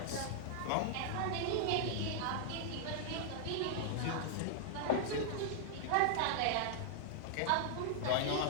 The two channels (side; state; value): both; different; correlation -0.01